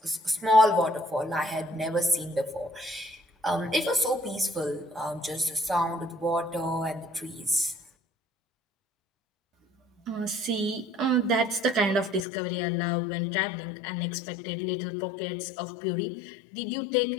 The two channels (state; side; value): drops out; right; at 12.2 s